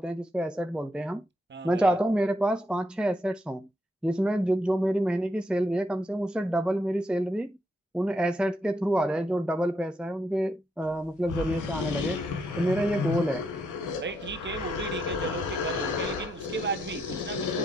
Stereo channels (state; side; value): normal; both; correlation 0.78